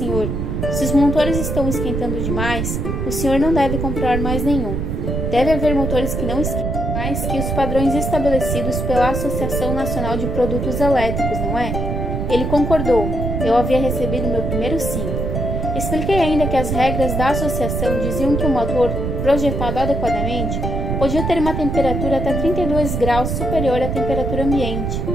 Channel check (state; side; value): noise; right; rumble, 2 dB below the sound